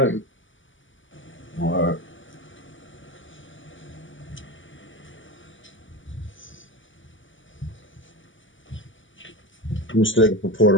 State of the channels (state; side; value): late; right; 0.56 ms